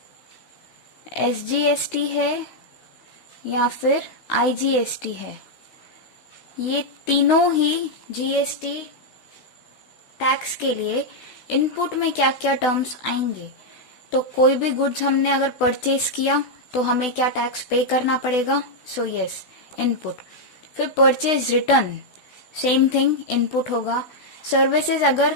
एसजीएसटी है या फिर आईजीएसटी है। ये तीनों ही जीएसटी टैक्स के लिए इनपुट में क्या क्या टर्म्स आएंगे। तो कोई भी गुड्स हमने अगर परचेज किया तो हमें क्या टैक्स पे करना पड़ेगा। So yes, input. फिर purchase return, same thing, input होगा। सर्विसेज,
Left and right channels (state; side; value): late; right; 16 ms